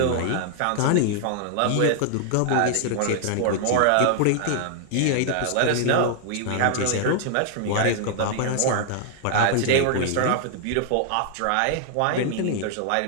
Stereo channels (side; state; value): both; different; correlation 0.00